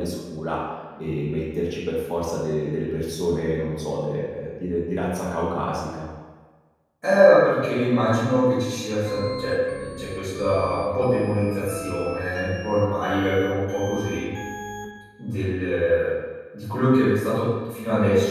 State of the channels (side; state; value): both; identical; correlation 1.00